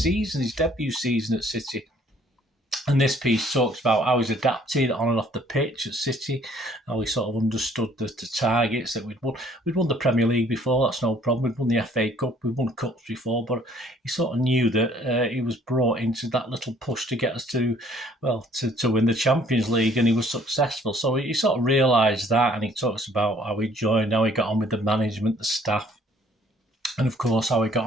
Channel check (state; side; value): normal; both; correlation 0.60